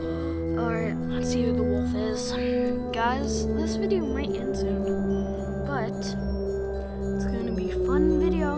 let's see who the wolf is. Guys, this video might end soon, but it's gonna be a fun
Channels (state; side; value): identical; both; correlation 1.00